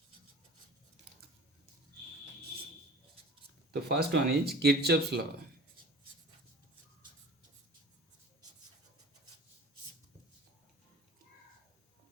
The first one is Kirchhoff's law.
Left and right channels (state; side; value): normal; both; correlation 0.41